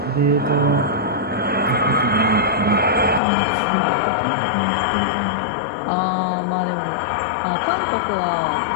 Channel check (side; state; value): right; drops out; at 3.2 s